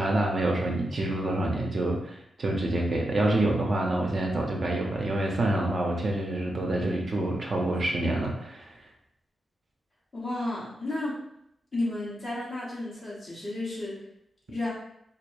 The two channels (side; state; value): both; normal; correlation 0.86